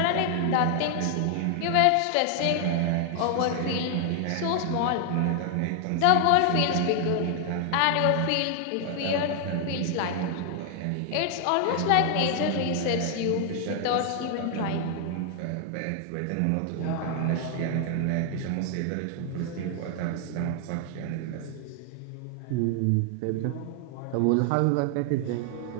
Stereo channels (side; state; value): both; different; correlation 0.00